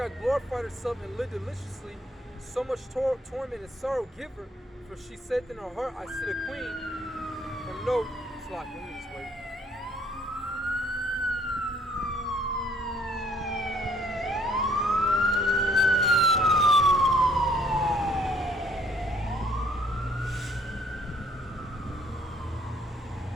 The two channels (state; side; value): normal; both; correlation 0.63